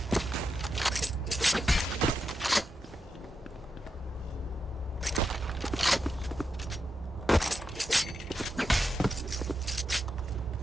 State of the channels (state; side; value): normal; both; correlation 0.86